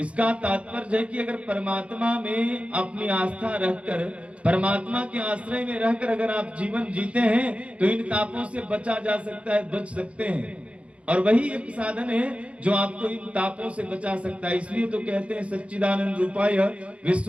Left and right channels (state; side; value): late; left; 0.062 ms